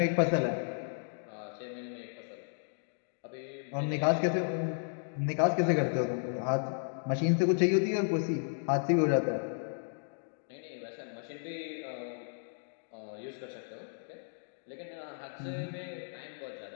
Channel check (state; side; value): silent; right; digital silence